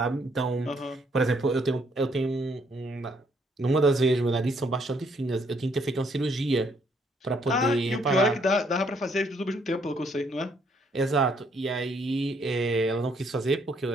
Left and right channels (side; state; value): both; normal; correlation 0.69